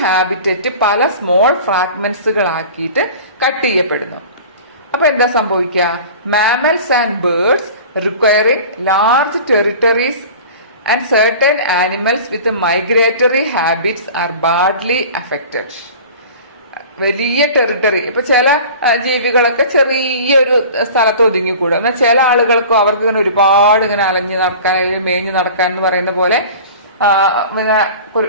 ഹാബിറ്ററ്റ് പല സ്മോൾ ഫ്രാഗ്മെന്റ്സുകളാക്കിയിട്ട് കട്ട് ചെയ്യപ്പെടുന്നു. അപ്പൊ എന്താ സംഭവിക്കുക? Mammals and birds requiring large territories and certain animals with migratory habits are badly affected. വലിയ ടെറിട്ടറി, ഇപ്പൊ ചില ജീവികളൊക്കെ ചെറിയൊരു സ്ഥലത്ത് ഒതുങ്ങിക്കൂടും. എന്നാൽ ചില ആളുകൾക്കും അവർക്ക് ഇങ്ങനെ ഒരുപാട് ഇങ്ങനെ അലഞ്ഞു നടക്കാൻ, മേഞ്ഞു നടക്കാൻ എന്ന് പറയുന്ന പോലെ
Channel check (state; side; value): inverted; both; correlation -0.40